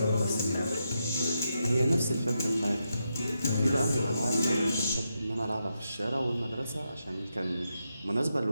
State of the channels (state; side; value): inverted; both; correlation -0.85